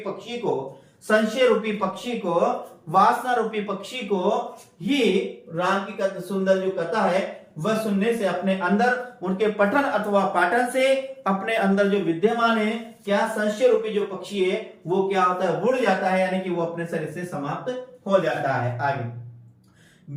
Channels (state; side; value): identical; both; correlation 1.00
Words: पक्षी को, संशय रूपी पक्षी को, वासना रूपी पक्षी को ही राम की सुंदर जो कथा है वह सुनने से अपने अंदर उनके पठन अथवा पाठन से अपने अंदर जो विद्यमान है क्या संशय रूपी जो पक्षी है वो क्या होता है, उड़ जाता है, यानी कि वो अपने शरीर से समाप्त हो जाता है। आगे,